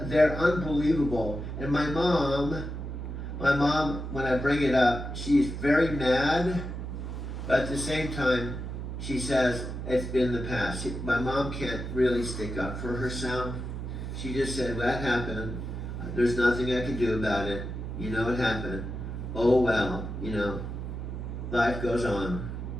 unbelievable. And my mom, when I bring it up, she's very mad, but at the same time, she says it's been the past. My mom can't really stick up for herself. She just said, that happened. There's nothing I can do about it. You know it happened. Oh well, you know, life goes on.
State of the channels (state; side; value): noise; right; hum, 6 dB below the sound